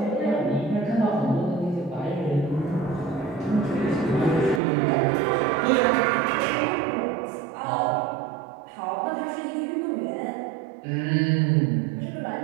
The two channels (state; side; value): drops out; left; at 4.6 s